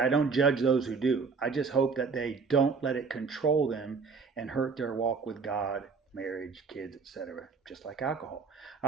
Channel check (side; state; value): left; quieter; 5.0 dB